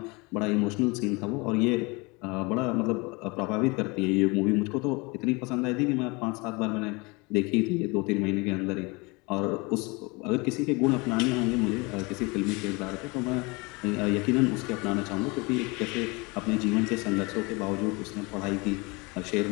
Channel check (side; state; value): right; quieter; 26.8 dB